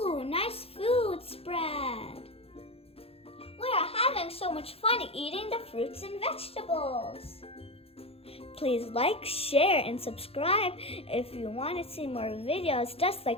nice food spread. We are having so much fun eating the fruits and vegetables. Please like, share, and subscribe. If you want to see more videos just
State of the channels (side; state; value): right; late; 0.28 ms